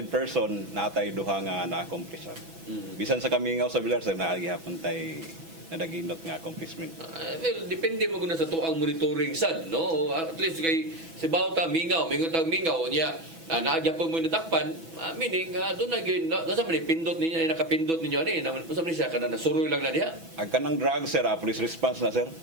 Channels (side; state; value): left; late; 6.1 ms